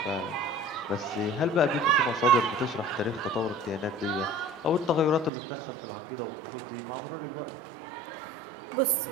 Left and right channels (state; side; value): drops out; left; at 5.3 s